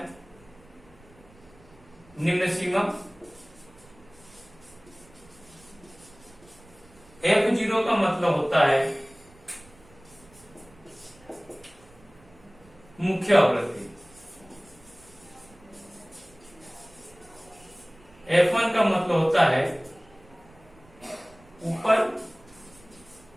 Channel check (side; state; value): right; noise; rumble, 26 dB below the sound